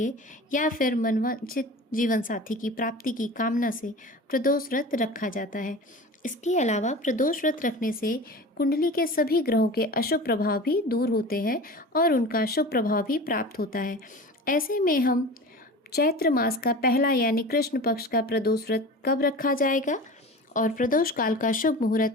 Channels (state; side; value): normal; both; correlation 0.35